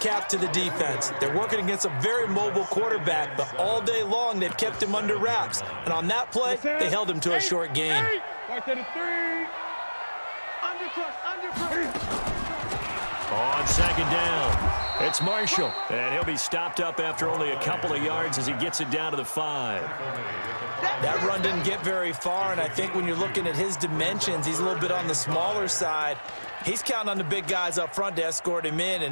to the defense? They're working against a very mobile quarterback, but all day long they've kept him under wraps. And on that play, they held him to a short gain. On 2nd down, it's Marshall. And he'll be stopped up after only a couple of yards as he gets it down to the 5. That run didn't get very far, and I think when you're looking at his dimensions, he's a little bit on the smaller side. He's counting on the big guys up front to escort him in,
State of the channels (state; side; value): inverted; both; correlation -1.00